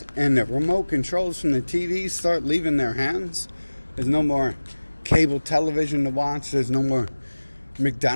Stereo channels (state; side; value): inverted; both; correlation -1.00